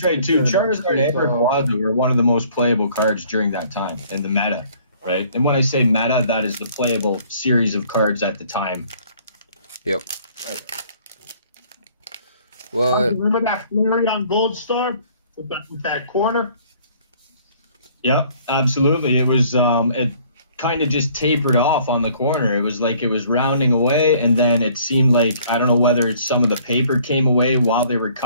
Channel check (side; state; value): both; inverted; correlation -0.58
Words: right too. Charizard and Rayquaza were one of the most playable cards during that time in the meta, right? And when I say meta, that is the playable series of cards at the time. Yep. Well, remember that Flareon Gold Star with that corner? Yep, absolutely. It was it kind of just tapered off on the corner. It was like it was rounding away, and then it seemed like, I don't know whether some of the paper came away while they were